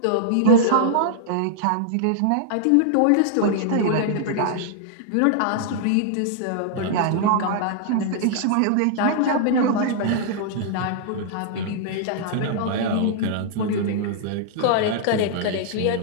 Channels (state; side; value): different; both; correlation -0.01